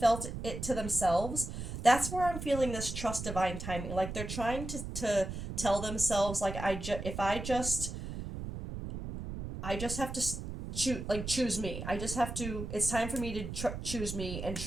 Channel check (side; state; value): right; noise; rumble, 7 dB below the sound